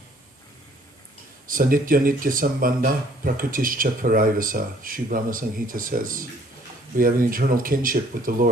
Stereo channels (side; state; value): both; normal; correlation 0.59